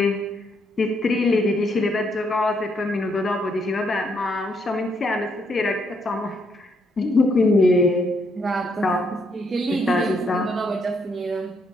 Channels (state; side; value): normal; both; correlation 0.74